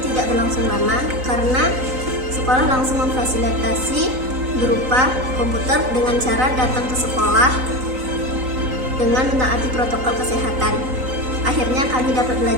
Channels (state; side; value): late; left; 3.9 ms